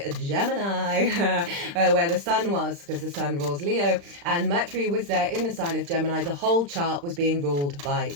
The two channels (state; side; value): late; left; 35 ms